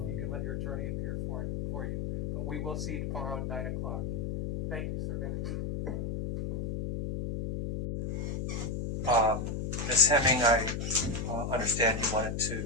you can let your attorney appear for you. But we will see you tomorrow at 9 o'clock. Thank you, sir. Thank you. Ms. Hemming, I understand you wanted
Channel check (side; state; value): left; noise; hum, 3 dB below the sound